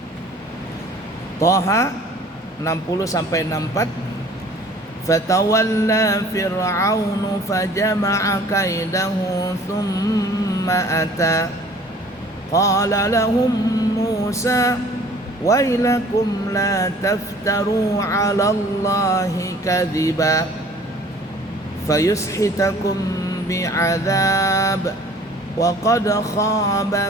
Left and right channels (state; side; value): normal; both; correlation 0.51